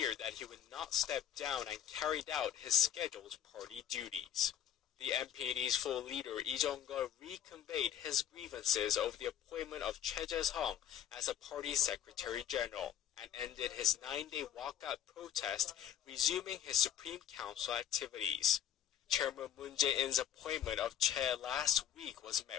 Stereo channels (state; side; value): quieter; right; 10.4 dB